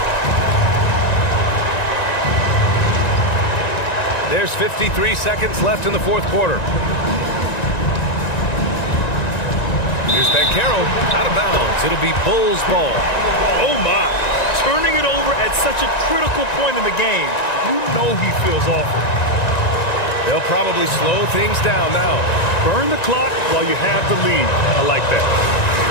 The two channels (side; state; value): right; late; 1.9 ms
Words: There's 53 seconds left in the 4th quarter. Here's Banchero out of bounds. It'll be Bulls ball. Oh my, turning it over at such a critical point in the game. You know he feels awful. They'll probably slow things down now. Burn the clock while you have the lead. I like that.